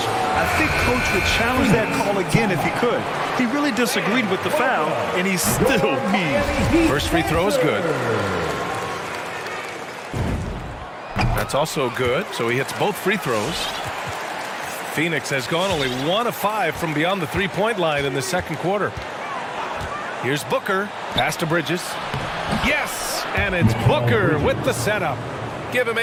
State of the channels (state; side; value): identical; both; correlation 1.00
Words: I think coach would challenge that call again if he could. He really disagreed with the foul, and he's still mean. First free throw is good. That's also good, so he hits both free throws. Phoenix has gone only 1 of 5 from beyond the three-point line in the second quarter. Here's Booker. Pass to Bridges. Yes! And it's Booker with the setup. Give him